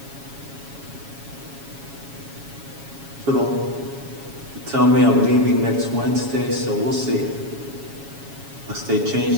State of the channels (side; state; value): left; late; 7.2 ms